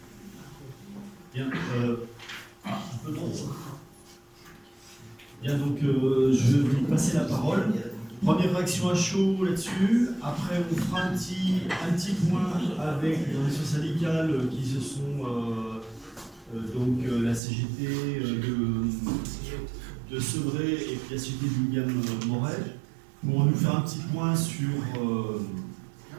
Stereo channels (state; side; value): drops out; left; at 17.4 s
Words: Bien, un peu trop. Bien, donc je vais vous passer la parole. Première réaction à chaud là-dessus. Après, on fera un petit point avec les organisations syndicales qui se sont donc la CGT de Sevré et puis la société de William Morel pour nous faire un petit point sur